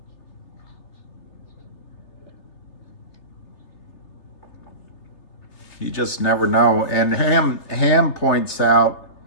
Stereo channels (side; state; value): right; late; 3.3 ms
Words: You just never know. And Ham points out